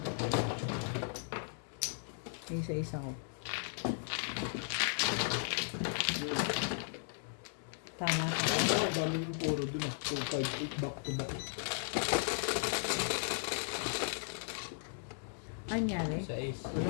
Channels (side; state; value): right; silent; digital silence